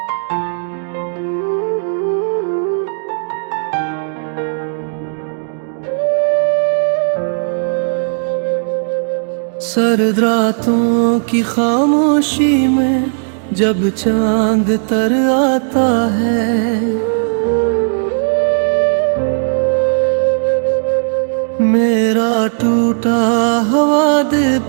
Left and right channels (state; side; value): silent; left; digital silence